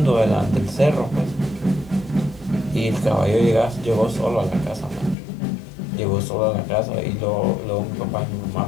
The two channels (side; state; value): right; drops out; at 5.2 s